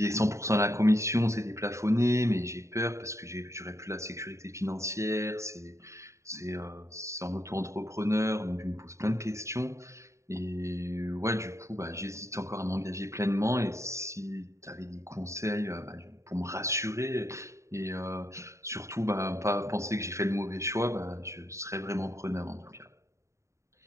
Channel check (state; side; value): late; left; 0.14 ms